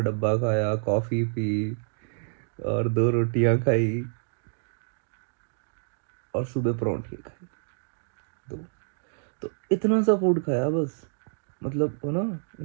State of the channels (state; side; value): silent; left; digital silence